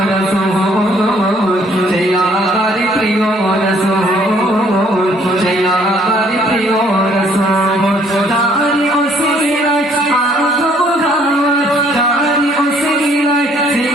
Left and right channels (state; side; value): normal; both; correlation 0.63